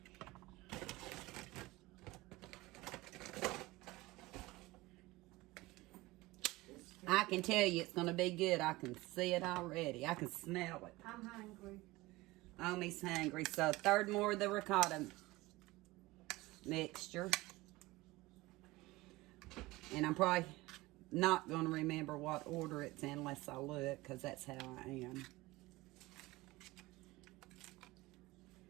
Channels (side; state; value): left; quieter; 20.3 dB